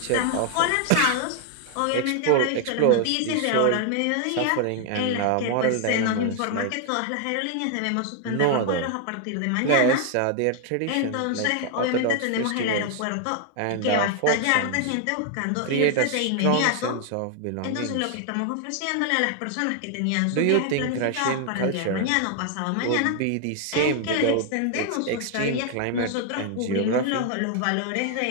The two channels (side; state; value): both; different; correlation 0.00